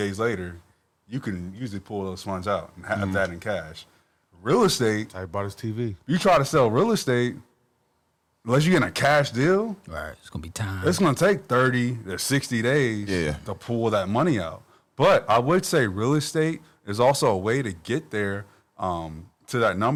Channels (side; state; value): both; identical; correlation 1.00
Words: later, you can usually pull those funds out and have that in cash. Real estate, I bought his TV. you try to sell real estate, unless you get a cash deal, Right. It's going to be time. it's going to take 30 to 60 days Yeah. to pull that money out. But I would say real estate is also a way to get there to that